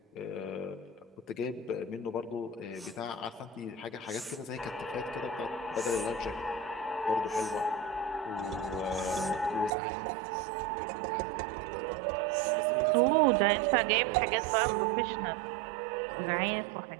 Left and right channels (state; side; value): drops out; left; at 9.7 s